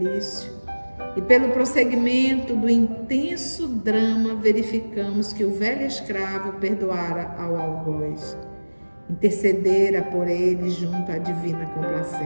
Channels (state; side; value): inverted; both; correlation -1.00